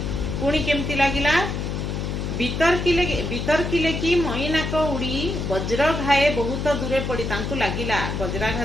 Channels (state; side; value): noise; left; hum, 3 dB below the sound